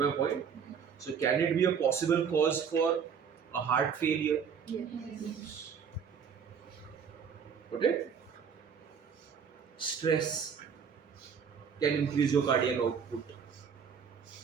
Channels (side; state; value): left; quieter; 6.9 dB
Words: point? So can it be a possible cause for a heart failure? Yes. Okay? Stress can increase your cardiac output.